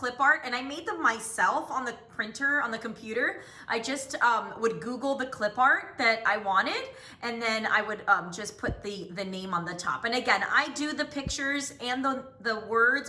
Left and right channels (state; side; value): identical; both; correlation 1.00